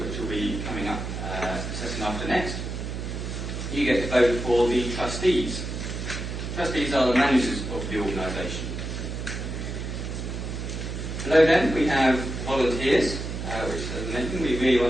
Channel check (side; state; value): right; noise; hum, 5 dB below the sound